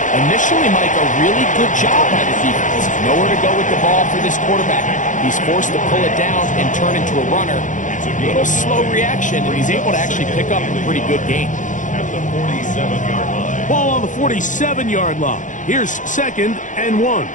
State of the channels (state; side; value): late; right; 0.37 ms